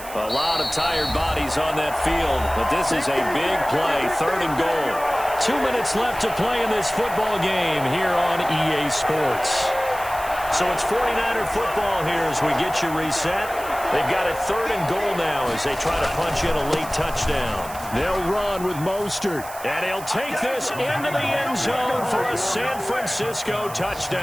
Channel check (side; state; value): right; noise; hiss, 15 dB below the sound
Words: A lot of tired bodies on that field, but this is a big play, third and goal. 2 minutes left to play in this football game here on EA Sports. So it's 49er football here as we get you reset. They've got it 3rd and goal now as they try to punch in a late touchdown. They'll run with Mostert. And he'll take this into the end zone for a San Francisco